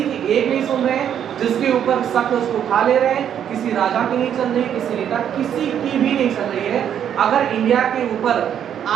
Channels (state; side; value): quieter; left; 9.3 dB